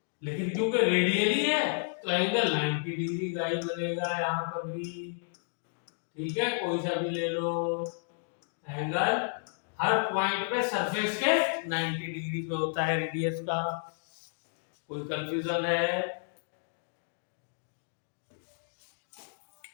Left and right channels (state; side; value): silent; right; digital silence